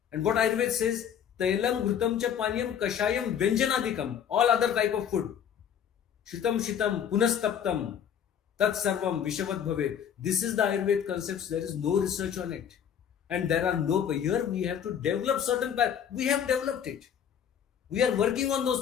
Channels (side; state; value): right; quieter; 8.6 dB